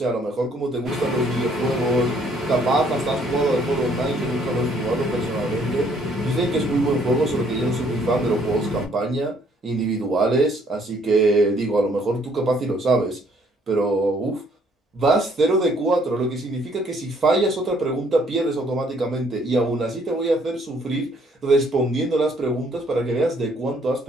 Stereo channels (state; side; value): normal; both; correlation 0.64